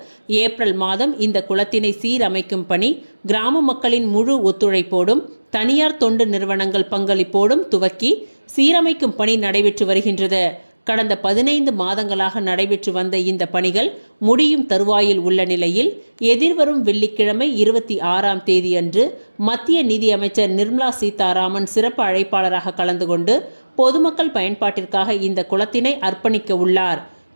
ஏப்ரல் மாதம் இந்த குளத்தினை சீரமைக்கும் பணி கிராம மக்களின் முழு ஒத்துழைப்போடும் தனியார் தொண்டு நிறுவனங்கள் பங்களிப்போடும் துவக்கி சீரமைக்கும் பணி நடைபெற்று வருகின்றது. கடந்த 15 மாதங்களாக நடைபெற்று வந்த இந்த பணிகள் முடியும் தருவாயில் உள்ள நிலையில் எதிர்வரும் வெள்ளிக்கிழமை 26ஆம் தேதியன்று மத்திய நிதி அமைச்சர் நிர்மலா சீதாராமன் சிறப்பு அழைப்பாளராக கலந்து கொண்டு பொதுமக்கள் பயன்பாட்டிற்காக இந்த குளத்தினை அர்ப்பணிக்க உள்ளார்.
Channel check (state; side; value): inverted; both; correlation -1.00